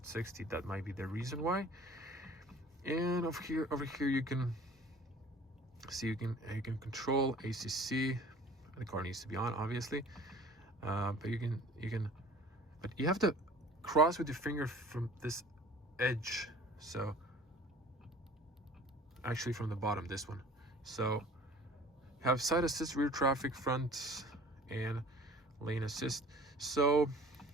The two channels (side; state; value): both; normal; correlation 0.47